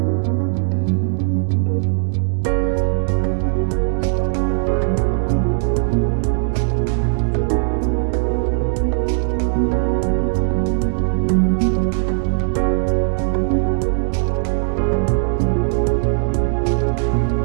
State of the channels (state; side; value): silent; left; digital silence